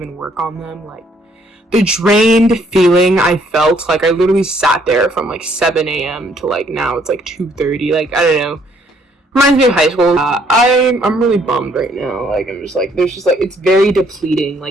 work on them. Like the drained feeling I felt, like I literally sat there from like 7 a.m. to like now it's like 2:30. Like I don't know. Reminds me of high school. I'm really bummed right now. Like I'm just like there's just like it's very depleting.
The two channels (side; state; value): both; normal; correlation 0.66